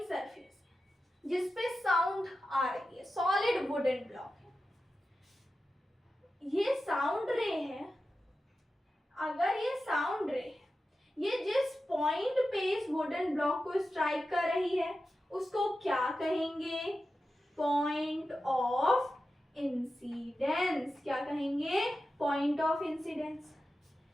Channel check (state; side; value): normal; both; correlation 0.92